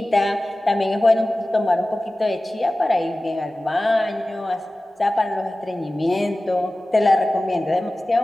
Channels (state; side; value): normal; both; correlation 0.96